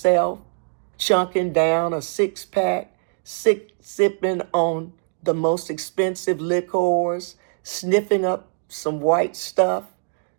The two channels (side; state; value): left; silent; digital silence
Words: chunking down a six-pack, sipping on the most expensive liquors, sniffing up some white stuff,